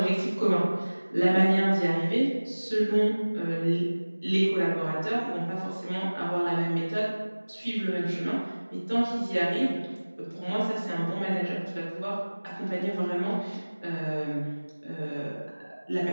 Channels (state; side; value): inverted; both; correlation -1.00